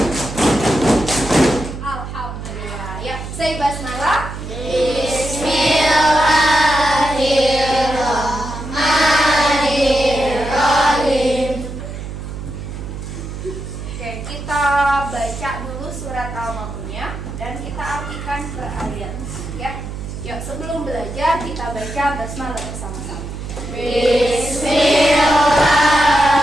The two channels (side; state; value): right; noise; hum, 8 dB below the sound